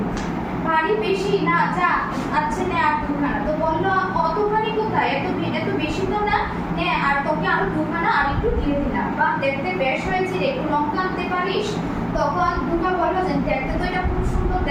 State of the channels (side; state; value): both; identical; correlation 1.00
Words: ভারী বেশি না, যা আচ্ছা নে আর দুখানা। তো বললো অতখানি কোথায়, এত বেশি তো না, নে আর তোকে আরো দুখানা আর একটু দিয়ে দিলাম। বা দেখতে বেশ হয়েছে রে, একটু লঙ্কা আনতে পারিস? তখন দুর্গা বললো যে দেখতে তো এটা খুব সুন্দর